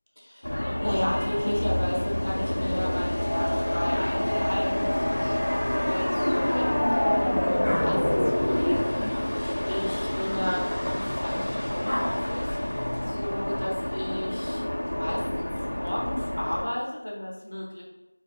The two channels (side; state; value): both; inverted; correlation -1.00